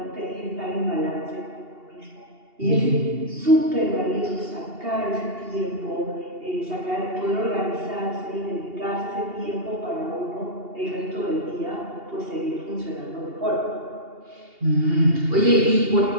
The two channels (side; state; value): left; late; 2.8 ms